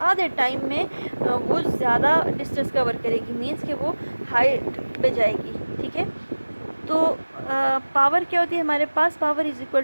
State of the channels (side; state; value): both; inverted; correlation -1.00